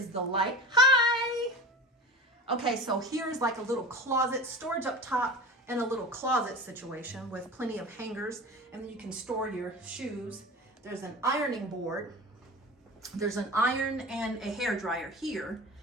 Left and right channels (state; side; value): normal; both; correlation 0.32